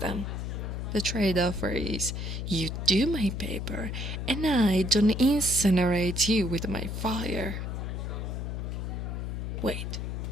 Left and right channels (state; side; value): noise; left; hum, 4 dB below the sound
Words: The trade offer is you do my paper and I don't incinerate you with my fire. Wait,